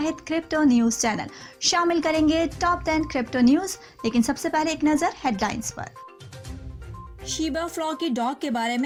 کرپٹو نیوز چینل۔ شامل کریں گے ٹاپ 10 کرپٹو نیوز، لیکن سب سے پہلے ایک نظر ہیڈ لائنز پر۔ شیبا فلاکی ڈاگ کے بارے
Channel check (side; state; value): both; identical; correlation 1.00